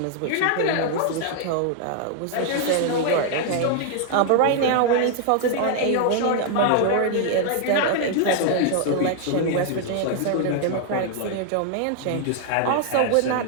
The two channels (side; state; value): both; different; correlation 0.00